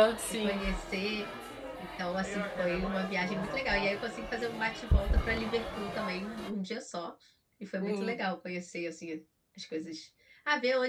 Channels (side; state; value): both; identical; correlation 1.00